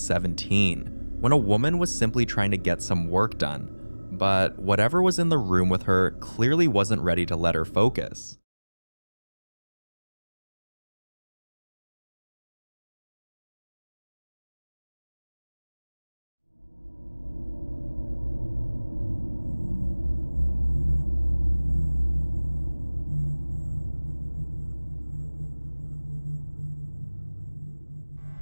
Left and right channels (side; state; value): both; inverted; correlation -1.00